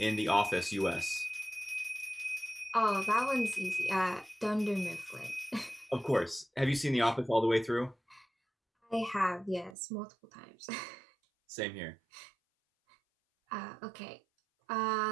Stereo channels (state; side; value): drops out; left; at 9.8 s